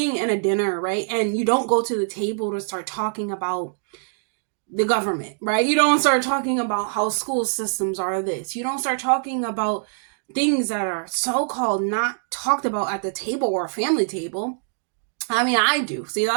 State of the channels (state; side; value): silent; left; digital silence